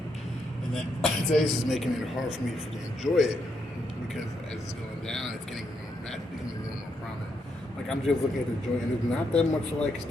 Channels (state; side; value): normal; both; correlation 0.79